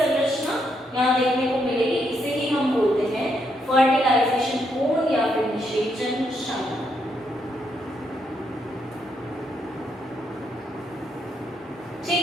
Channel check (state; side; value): normal; both; correlation 0.77